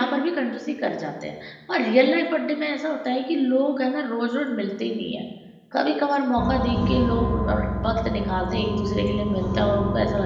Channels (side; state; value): both; identical; correlation 1.00